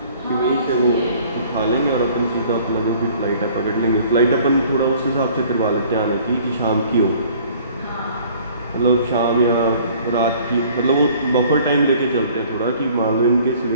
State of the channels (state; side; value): inverted; both; correlation -0.53